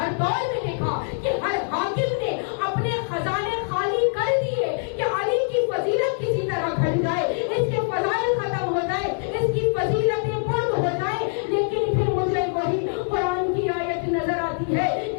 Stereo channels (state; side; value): silent; right; digital silence